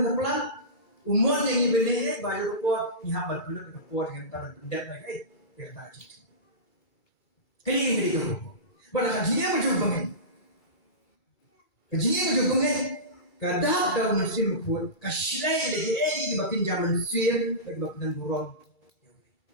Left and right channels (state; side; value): late; right; 2.3 ms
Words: pelan umur yang ibene bayu por ni habal pelur igapor dengan tar pendap lagi ya tadi. Kali ini dia tu. Pada kajian macam ni. Kajian macam ni. Kadang dalam mesin pun kasilai lagi di bakin zaman mesin lagi bakin burung.